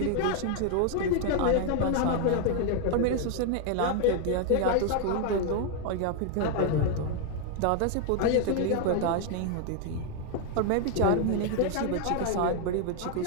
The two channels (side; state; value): both; different; correlation 0.00